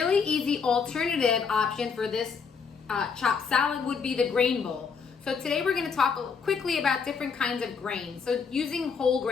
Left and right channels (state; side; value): quieter; right; 5.8 dB